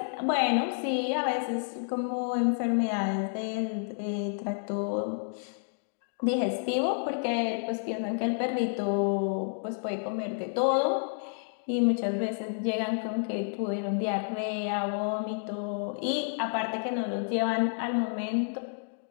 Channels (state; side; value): silent; right; digital silence